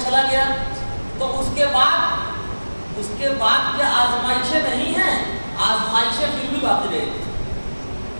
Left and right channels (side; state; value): both; inverted; correlation -1.00